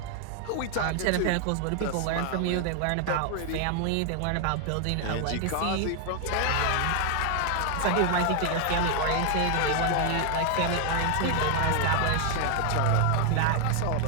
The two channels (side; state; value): both; different; correlation 0.00